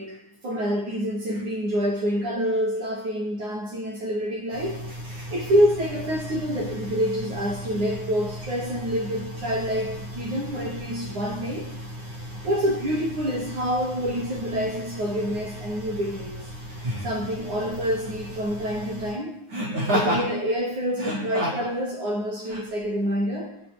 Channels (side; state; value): left; late; 9.6 ms